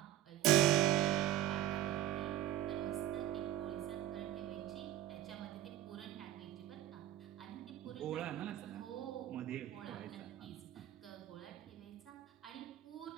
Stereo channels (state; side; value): quieter; left; 12.7 dB